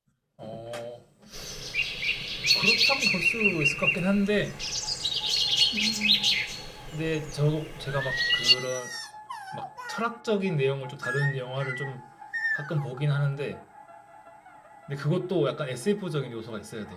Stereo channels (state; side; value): identical; both; correlation 1.00